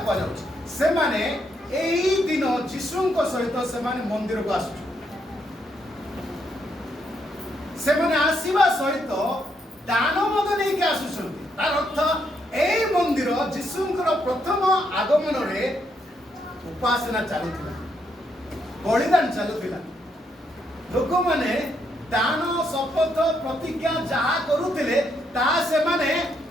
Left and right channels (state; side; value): normal; both; correlation 0.76